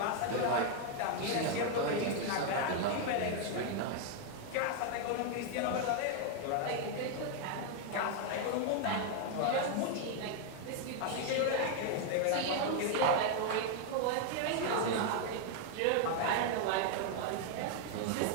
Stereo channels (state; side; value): different; both; correlation 0.01